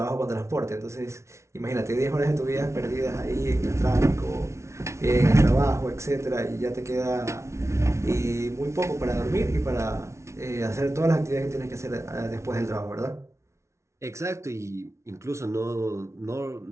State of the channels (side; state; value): left; late; 0.13 ms